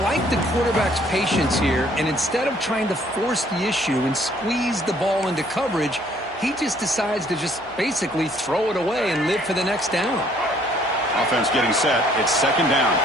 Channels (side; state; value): right; noise; hum, 26 dB below the sound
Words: like the quarterback's patience here, and instead of trying to force the issue and squeeze the ball into coverage, he just decides to just basically throw it away and live for the next down. Offense getting set. It's 2nd down.